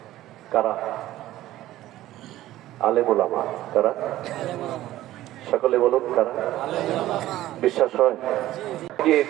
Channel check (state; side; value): quieter; left; 14.8 dB